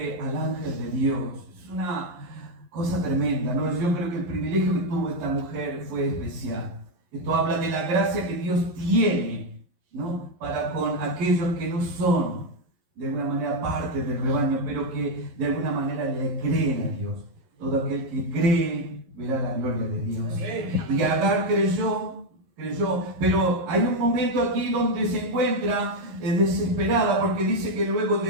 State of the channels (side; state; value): left; late; 11 ms